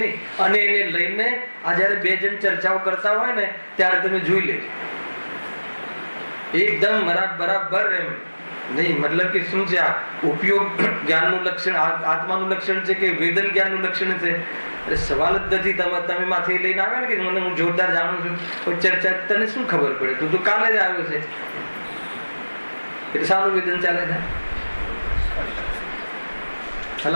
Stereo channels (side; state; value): both; inverted; correlation -1.00